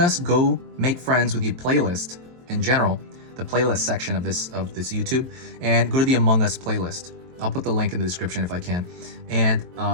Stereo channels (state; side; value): late; left; 23 ms